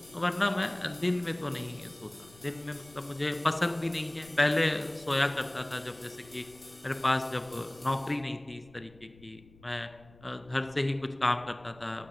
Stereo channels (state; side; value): noise; left; rumble, 24 dB below the sound